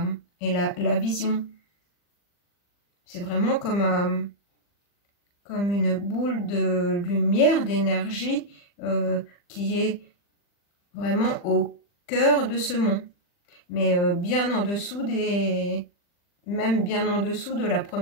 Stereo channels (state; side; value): late; right; 40 ms